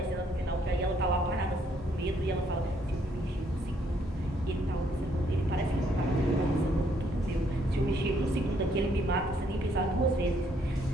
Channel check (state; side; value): normal; both; correlation 0.69